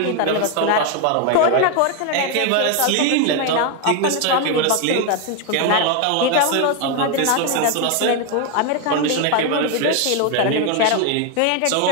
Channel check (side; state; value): both; different; correlation 0.01